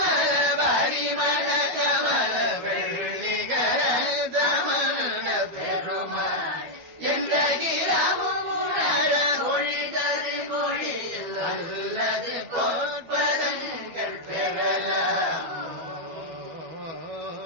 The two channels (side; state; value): left; late; 12 ms